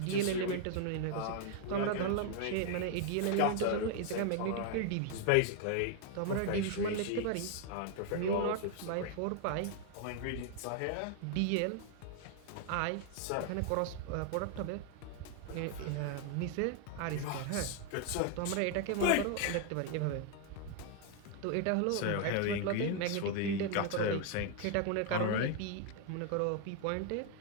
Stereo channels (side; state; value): both; different; correlation 0.00